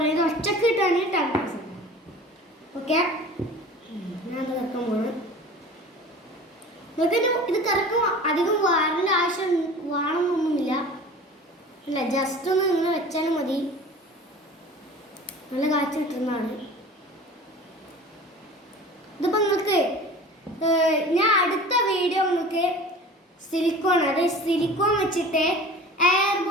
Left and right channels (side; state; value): both; normal; correlation 0.40